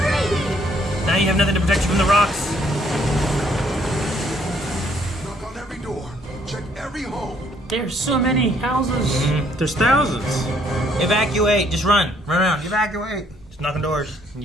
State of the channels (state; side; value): normal; both; correlation 0.66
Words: Now you have nothing to protect you from the rocks. Knock on every door. Check every home. There's so many houses. There's thousands. Evacuate. Just run. Run around. Evacuate. Just knocking doors and